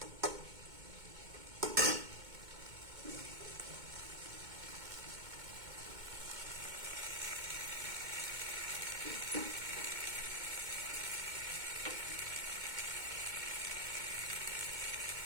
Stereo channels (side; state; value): left; late; 2.2 ms